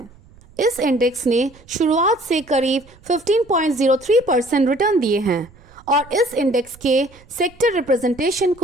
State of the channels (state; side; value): noise; right; rumble, 26 dB below the sound